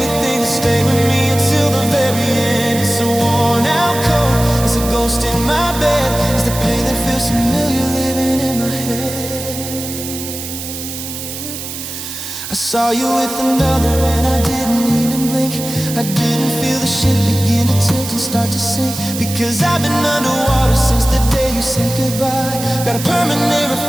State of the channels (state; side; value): noise; right; hiss, 8 dB below the sound